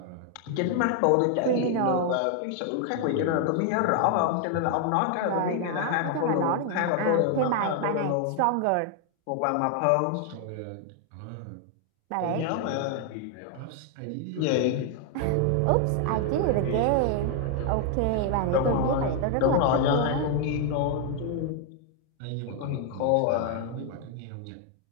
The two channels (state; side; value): different; both; correlation 0.00